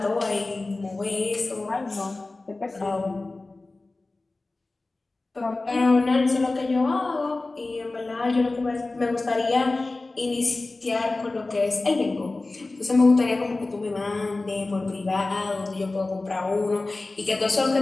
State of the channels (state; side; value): quieter; right; 3.2 dB